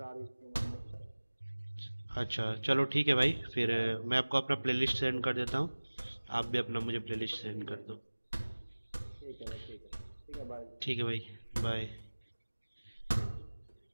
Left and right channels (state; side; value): inverted; both; correlation -1.00